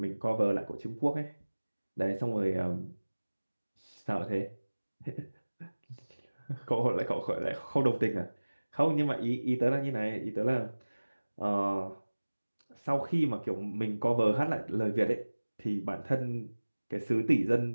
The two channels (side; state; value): both; inverted; correlation -1.00